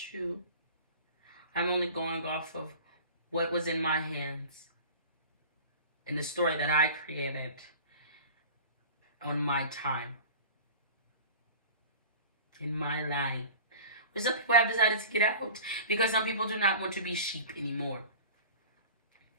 you, I'm only going off of what was in my hands and the story that I created on my time, in my line. But some people have decided to get out because some people do not want to be sheep anymore,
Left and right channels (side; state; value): both; inverted; correlation -0.39